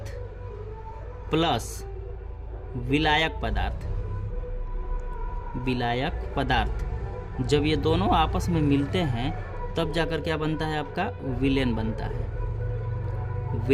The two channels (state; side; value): identical; both; correlation 1.00